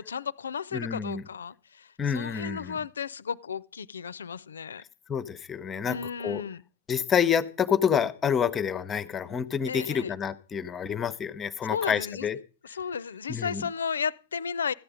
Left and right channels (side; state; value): right; quieter; 7.0 dB